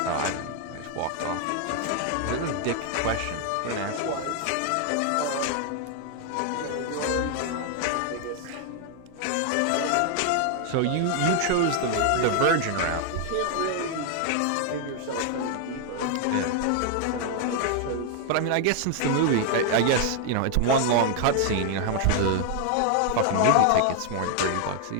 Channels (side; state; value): both; different; correlation 0.00